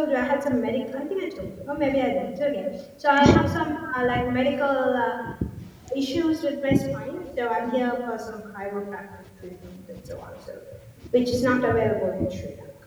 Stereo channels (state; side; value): identical; both; correlation 1.00